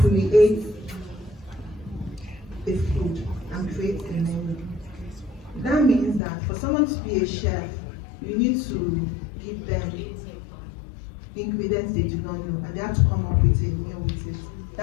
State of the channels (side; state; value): right; drops out; at 6.2 s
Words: a food and creates a menu. That means that for someone to be a chef, you need to give them ingredients they do not know, and they have to come up with a meal with it.